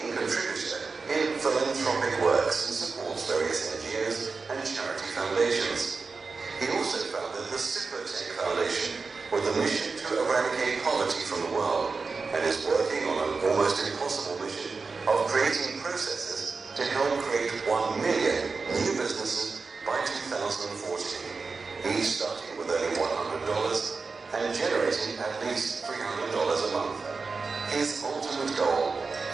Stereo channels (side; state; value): left; quieter; 4.4 dB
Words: contributor in philanthropic works and supports various NGOs and charity foundations. He also founded the Supertech Foundation with a mission to eradicate poverty from the world, and is working on an almost impossible mission of creating processes to help create 1 million new businesses by 2014, each starting with only $100 and generating at least $300 a month. His ultimate goal